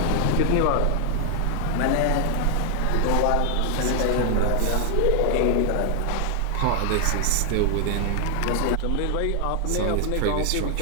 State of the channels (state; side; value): different; both; correlation 0.00